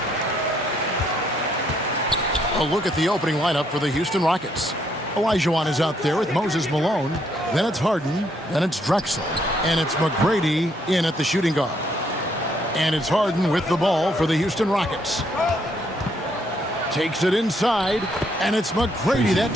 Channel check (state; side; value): normal; both; correlation 0.71